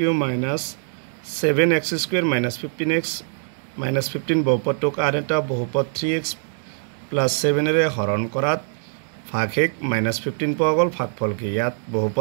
minus 7x square minus 15x minus 15 বহুপদটোক আন এটা বহুপদ 3x plus 7 এৰে হৰণ কৰাত ভাগশেষ minus 15 পোৱা গ'ল ভাগফল কি ইয়াত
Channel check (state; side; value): silent; left; 64 dB below the other